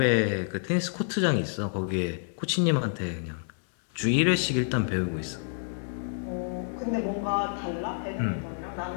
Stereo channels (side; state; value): right; silent; digital silence